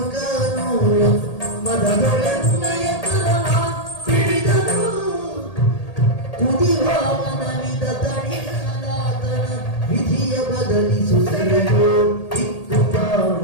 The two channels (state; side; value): late; right; 1.8 ms